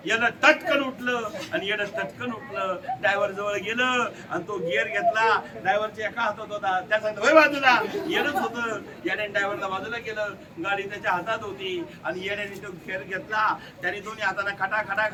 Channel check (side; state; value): both; identical; correlation 1.00